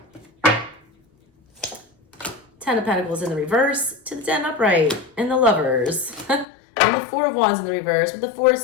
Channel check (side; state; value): right; drops out; at 6.5 s